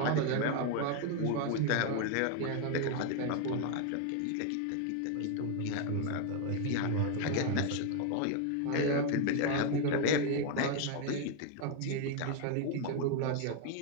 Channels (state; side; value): different; both; correlation 0.01